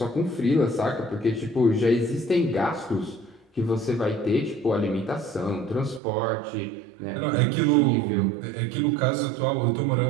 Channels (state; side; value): drops out; left; at 6.0 s